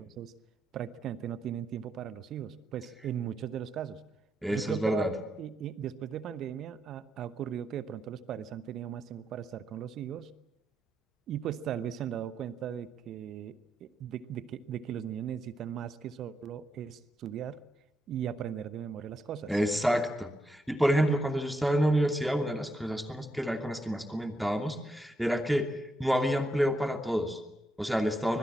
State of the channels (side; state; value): both; normal; correlation 0.81